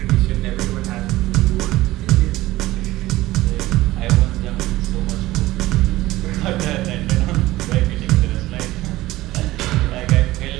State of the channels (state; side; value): quieter; left; 17.3 dB